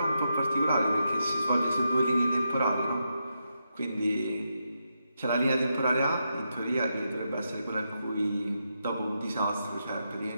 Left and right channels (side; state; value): both; inverted; correlation -0.84